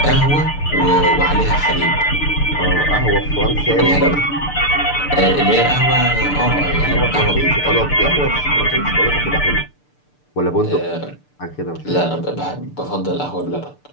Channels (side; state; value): right; late; 6.8 ms